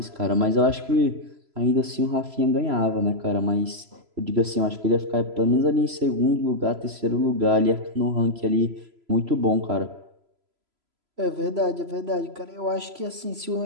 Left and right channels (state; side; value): late; left; 3.0 ms